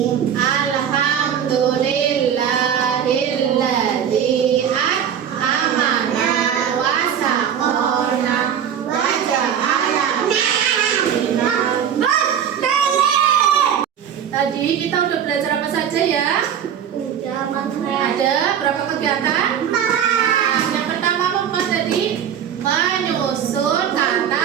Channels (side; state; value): left; quieter; 8.7 dB